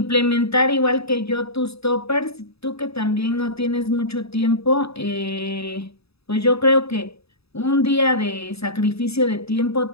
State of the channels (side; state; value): right; late; 0.78 ms